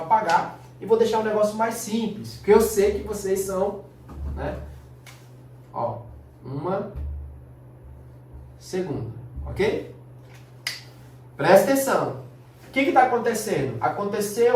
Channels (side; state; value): both; identical; correlation 1.00